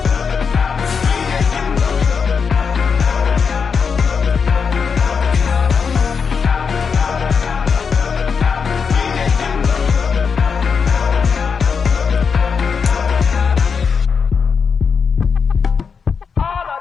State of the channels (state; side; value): quieter; right; 5.9 dB